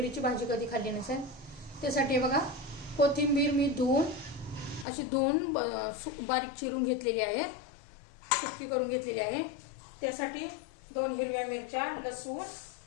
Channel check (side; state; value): right; drops out; at 4.9 s